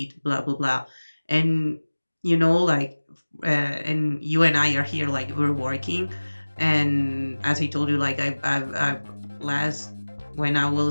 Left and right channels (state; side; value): inverted; both; correlation -1.00